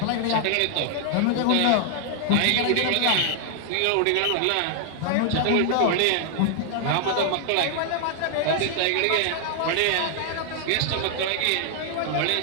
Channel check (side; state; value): both; different; correlation 0.00